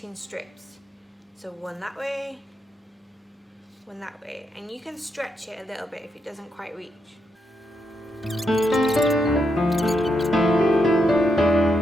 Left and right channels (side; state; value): both; normal; correlation 0.81